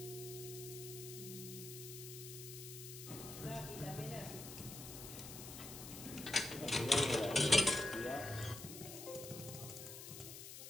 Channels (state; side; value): noise; left; hiss, 10 dB below the sound